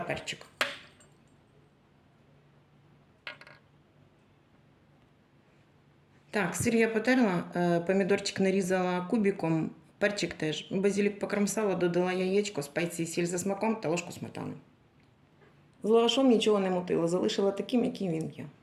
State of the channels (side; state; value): both; identical; correlation 1.00